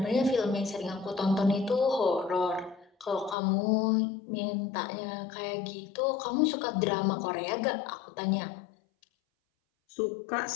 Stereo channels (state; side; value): drops out; right; at 3.4 s